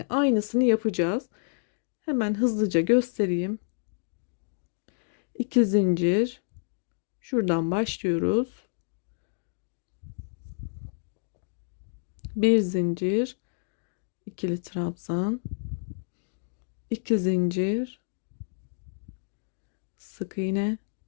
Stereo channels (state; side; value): silent; right; digital silence